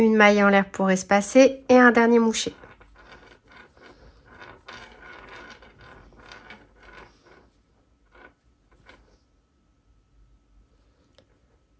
maille en l'air pour espacer et un dernier moucher.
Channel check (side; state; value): both; identical; correlation 1.00